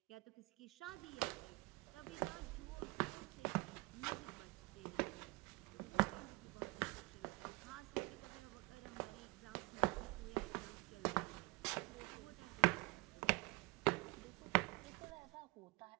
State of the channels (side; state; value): left; quieter; 24.3 dB